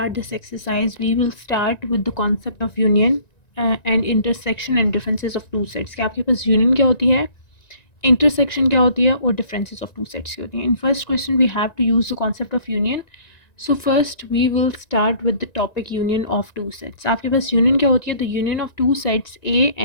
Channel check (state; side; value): late; right; 1.9 ms